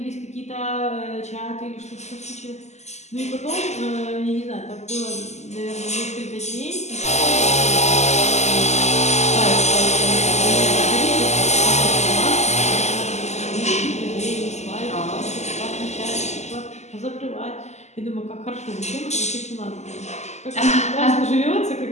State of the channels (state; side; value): late; right; 0.33 ms